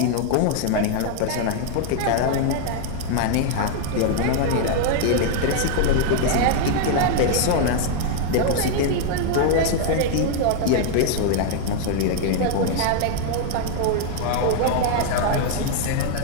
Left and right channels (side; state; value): both; different; correlation 0.00